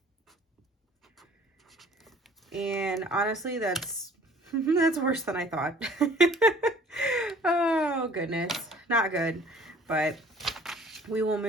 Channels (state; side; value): normal; both; correlation 0.51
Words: And honestly, that's worse than I thought. Oh goodness, not good, but we will